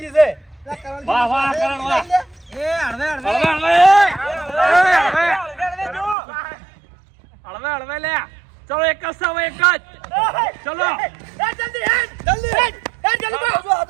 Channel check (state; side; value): drops out; left; at 6.2 s